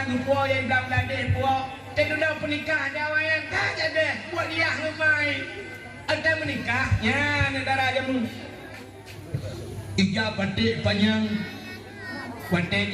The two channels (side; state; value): both; identical; correlation 1.00